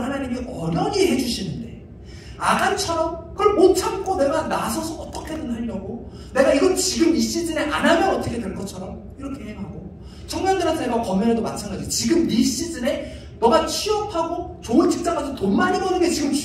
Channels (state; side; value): identical; both; correlation 1.00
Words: 하나님이 어련히 해주시는데, 아간처럼 그걸 못 참고 내가 나서서 어떻게든 하려고, 내가 이거 지금 이 시즌에 안 하면 어떻게 될 것처럼 이렇게 행하고, 청년들한테 제가 권면해도 마찬가지. 지금 이 시즌에 너가 취업하고 좋은 직장 가서 돈 많이 버는 게 지금